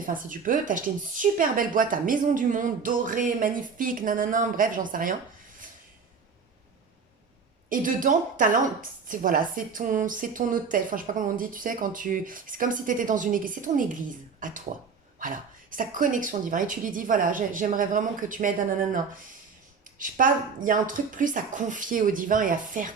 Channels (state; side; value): quieter; left; 5.5 dB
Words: si tu peux, t'acheter une super belle boîte à Maison du Monde, dorée, magnifique, nanana, bref, j'en sais rien. Et dedans, voilà, c'est ton hôtel. Enfin, je sais pas comment on dit, tu sais, c'est comme si tu étais dans une église. C'est ton église, à toi. Voilà. Sa connexion divine. Et tu lui dis, voilà, j'aimerais vraiment que tu m'aides, nanana. Je sais pas, il y a un truc plus à confier au divin et à faire